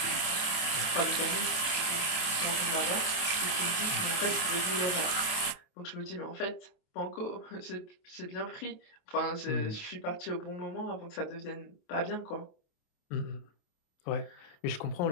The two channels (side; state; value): right; late; 28 ms